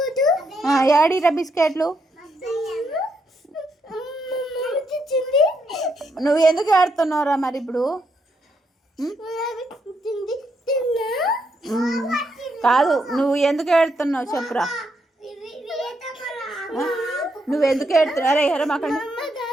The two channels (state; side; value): normal; both; correlation 0.78